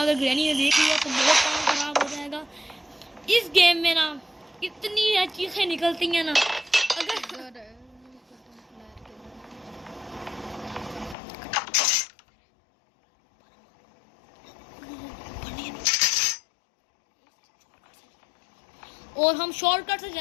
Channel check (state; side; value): drops out; right; at 11.2 s